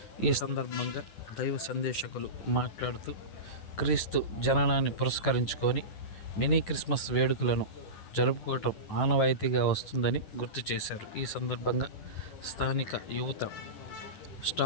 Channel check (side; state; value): right; late; 10 ms